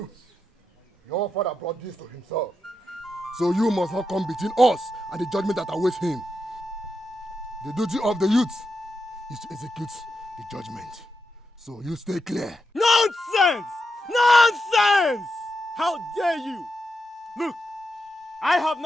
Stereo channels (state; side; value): normal; both; correlation 0.86